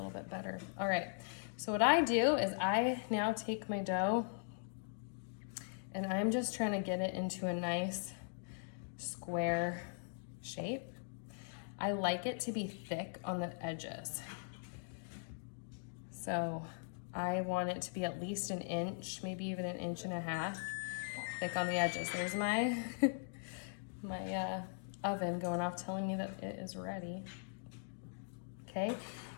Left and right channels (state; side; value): silent; right; digital silence